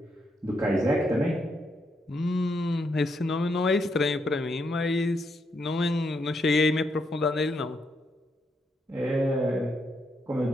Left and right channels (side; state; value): both; normal; correlation 0.78